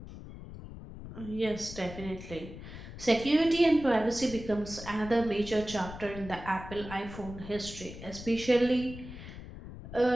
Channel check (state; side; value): noise; left; rumble, 13 dB below the sound